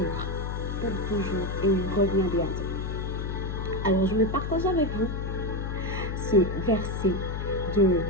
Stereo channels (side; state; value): left; noise; hum, 3 dB below the sound